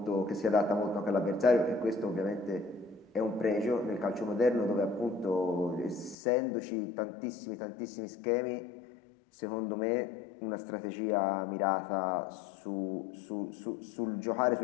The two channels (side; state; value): right; drops out; at 6.2 s